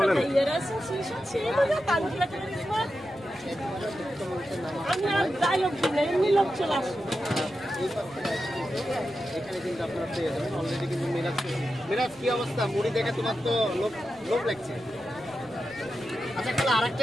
ভাইয়ারা আছে, তানজিলা খালা। আমি আর ডায়লগ দিই না, এমনি লোক চলে আসে। এই পাশ থেকে এখানে কিন্তু আপনারা পেয়ে যাবেন অলরেডি কিন্তু মিরাজ কি অবস্থা মুড়ি দেখে তোমার তো লোভ লাগছে। আচ্ছা খালা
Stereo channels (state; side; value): noise; right; rumble, 26 dB below the sound